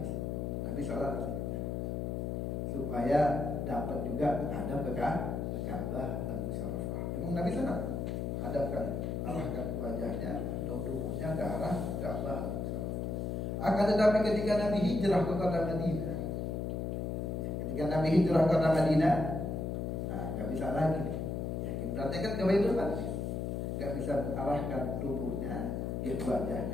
Nabi sholat supaya dapat juga menghadap ke Ka'bah dan Musyarrafah. Memang Nabi sana hadapkan, arahkan wajahnya atau tubuhnya ke arah Ka'bah. Akan tetapi ketika Nabi hijrah ke kota Madinah, ketika Nabi hijrah ke kota Madinah, nggak bisa lagi. Ya, kiblatnya kan ke Baitul Maqdis, nggak bisa mengarahkan tubuhnya, ya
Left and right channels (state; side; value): noise; left; hum, 2 dB below the sound